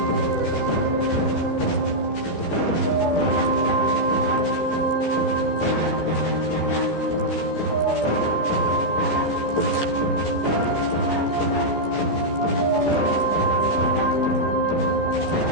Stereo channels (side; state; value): right; late; 14 ms